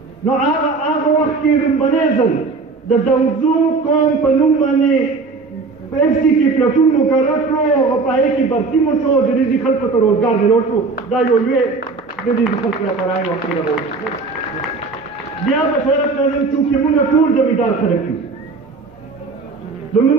نو هغه وخت کې لومبنی ځل د دوزو قوم په نوم باندې په اف سي کې پلټون مقرر کړو او په هغې کې برتي مو شو، د دې خلکو ته روزګار درلود شو. دا یو لوی د دې خلکو لپاره یو وخت ده. بیا بشارت لازم چونکې موږ ټول زمیندار خلک یو،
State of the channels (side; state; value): left; quieter; 4.1 dB